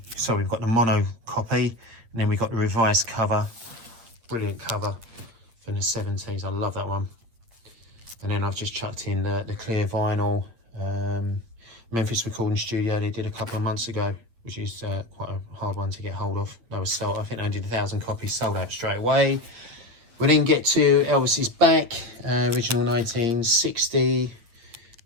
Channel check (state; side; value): late; left; 8.4 ms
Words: got the mono copy, and then we've got the revised cover. Brilliant cover from the '70s, I love that one. And then I've just chucked in the clear vinyl Memphis Recording Studio they did a couple of months ago, which is quite a hard one to get hold of. They were sold, I think they did 1,000 copies, sold out straight away. We then get to Elvis's back, original 1960,